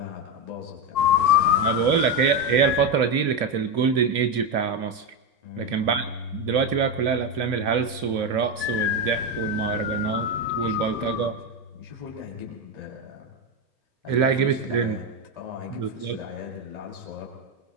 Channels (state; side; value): late; left; 2.8 ms